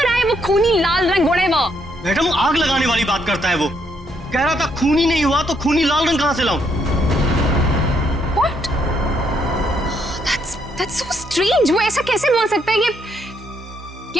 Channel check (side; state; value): both; normal; correlation 0.73